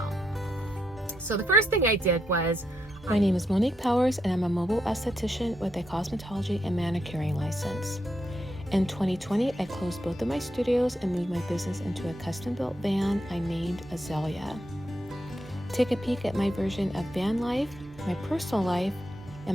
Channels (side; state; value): both; normal; correlation 0.81